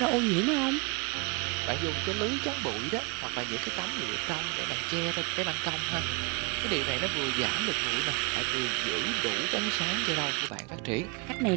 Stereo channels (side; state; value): left; quieter; 31.4 dB